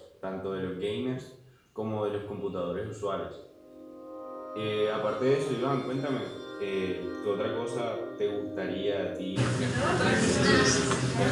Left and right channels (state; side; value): identical; both; correlation 1.00